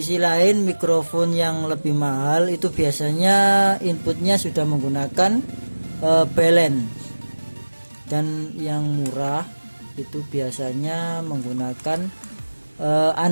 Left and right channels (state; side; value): inverted; both; correlation -1.00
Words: lain mikrofon yang lebih mahal itu biasanya inputnya sudah menggunakan balance, dan yang murah itu biasanya menggunakan